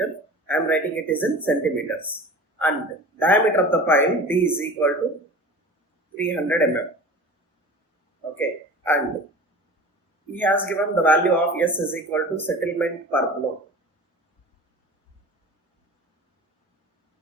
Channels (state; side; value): normal; both; correlation 0.38